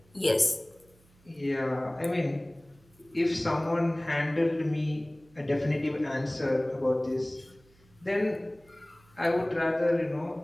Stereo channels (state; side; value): noise; right; hum, 30 dB below the sound